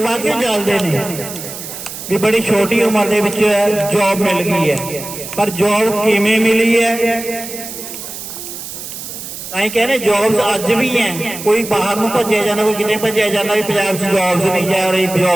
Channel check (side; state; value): right; noise; hiss, 10 dB below the sound